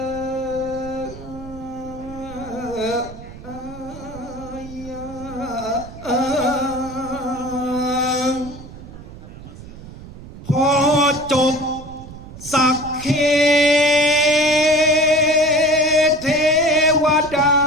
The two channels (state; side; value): noise; right; rumble, 15 dB below the sound